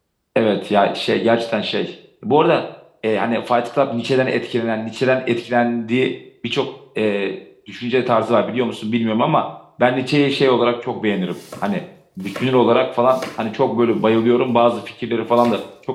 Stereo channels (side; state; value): both; identical; correlation 1.00